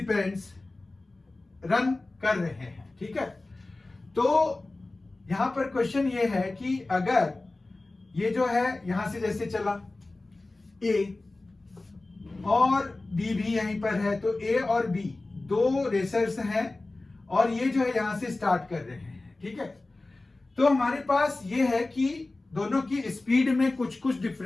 रन कर रहे हैं, ठीक है। तो यहां पर क्वेश्चन ये है कि अगर ये जो है यहां से जैसे चला ए और बी भी यहीं पर है, तो ए और बी दो रेसर्स हैं और ये जो है यहां से स्टार्ट कर रहे हैं, ठीक है। तो हमारे पास ये है कि दोनों की स्पीड में कुछ कुछ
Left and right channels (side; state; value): right; quieter; 3.1 dB